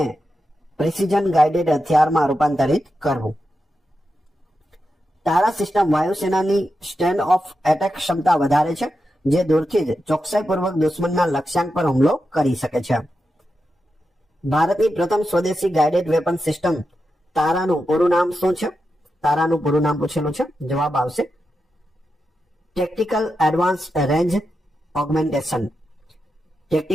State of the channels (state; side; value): normal; both; correlation 0.88